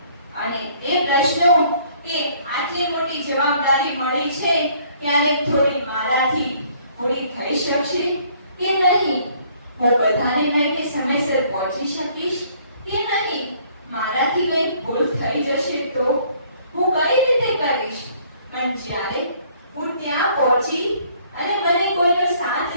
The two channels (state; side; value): inverted; both; correlation -0.61